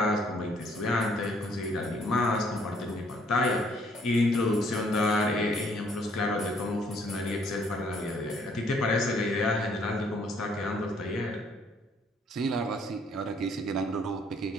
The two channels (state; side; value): normal; both; correlation 0.64